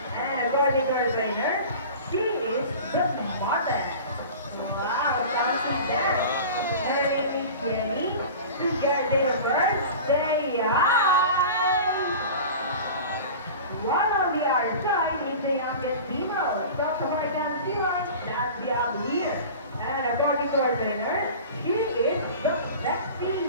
And according to our trainer, she is the mother. Wow, something there. Her name is Jenny. Together with birthday. One on the other side is the youngest female South American Sea Lion that we have here. And according to our trainer, she is the sexy,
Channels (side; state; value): both; inverted; correlation -0.36